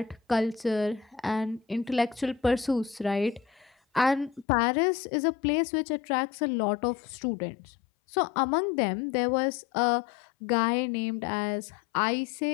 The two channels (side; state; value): right; drops out; at 4.5 s